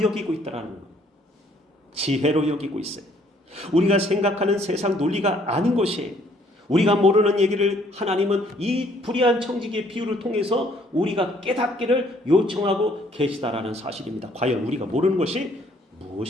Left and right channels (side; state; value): both; normal; correlation 0.63